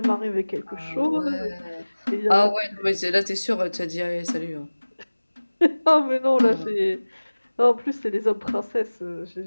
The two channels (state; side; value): inverted; both; correlation -1.00